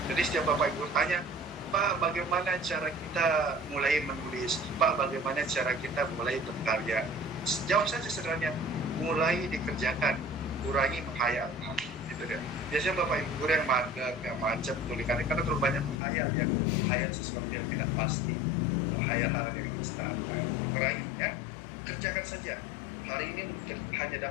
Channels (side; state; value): right; drops out; at 16.0 s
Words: Jadi setiap Bapak Ibu tanya, Pak, bagaimana cara kita mulai menulis? Pak, bagaimana cara kita mulai berkarya? Jawab saja sederhana, mulai dikerjakan, kurangi menghayal. Nah, gitu deh. Biasanya Bapak Ibu guru yang mager, yang macet tulisannya karena terlalu banyak menghayal sesuatu yang tidak pasti, menghayal hal yang instan. Nah, dikurangi ya, kerjakan saja. Hari ini hanya